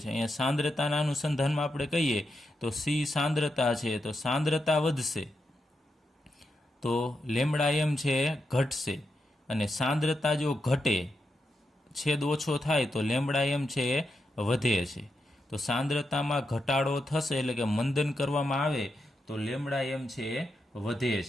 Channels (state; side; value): normal; both; correlation 0.85